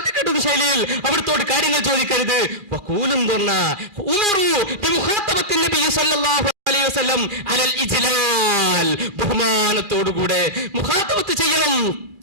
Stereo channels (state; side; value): late; left; 2.4 ms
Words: ശൈലിയിൽ അവിടുത്തോട് കാര്യങ്ങൾ ചോദിക്കരുത്. വഖൂലും ബഹുമാനത്തോടുകൂടെ മുഖാത്തബത്ത് ചെയ്യണം.